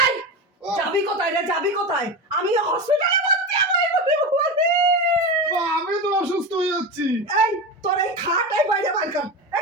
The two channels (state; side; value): normal; both; correlation 0.22